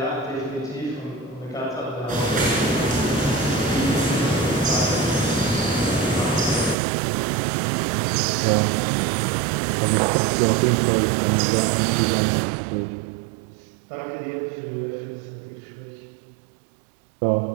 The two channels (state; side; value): drops out; left; at 6.8 s